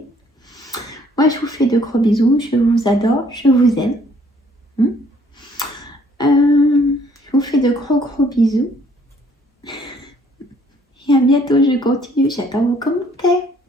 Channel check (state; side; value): normal; both; correlation 0.62